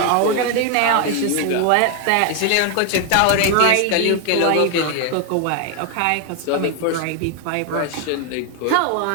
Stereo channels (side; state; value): both; different; correlation 0.01